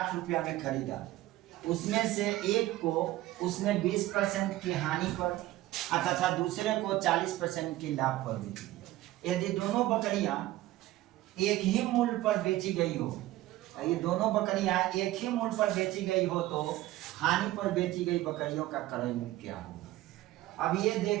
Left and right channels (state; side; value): quieter; left; 16.2 dB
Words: रुपया में खरीदा, उसमें से एक को उसने 20% की हानि पर तथा दूसरे को 40% की लाभ पर बेची। यदि दोनों बकरियां एक ही मूल्य पर बेची गई हो, ये दोनों बकरियां एक ही मूल्य पर बेची गई हो तो हानि पर बेची गई बकरियों का क्रय मूल्य क्या होगा। अब ये